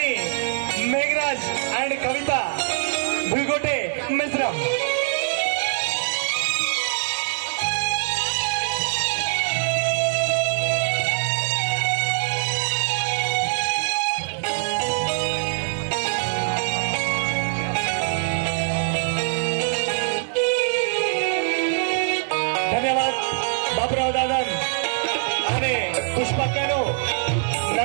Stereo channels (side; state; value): left; silent; digital silence